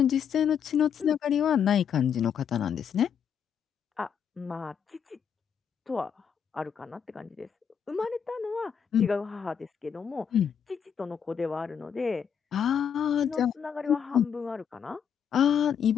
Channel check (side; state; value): right; quieter; 7.8 dB